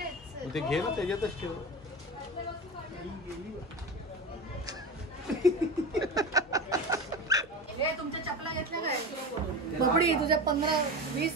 मग ते घे ना, त्याच्यातच ठेव. हे तुमच्या चपला घेतल्या काय बबडी? तुझ्या 15, 20,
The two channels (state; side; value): normal; both; correlation 0.26